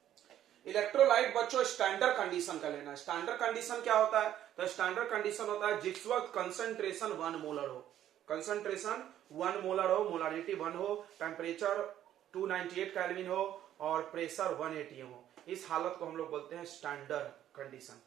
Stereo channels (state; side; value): quieter; left; 11.5 dB